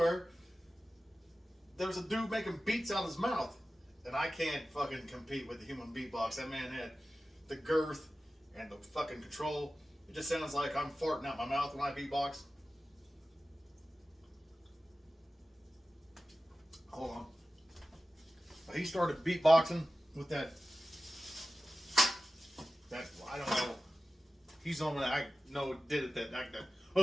there's a dude making beats out of his mouth. And I can't fucking compete with the human beatbox. That man had the girth and the fucking control. It just sounds like I'm farting out my mouth when I beatbox. Hold on. But he started beatboxing with that, I don't know. He's the one that I know did it,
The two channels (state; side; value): normal; both; correlation 0.95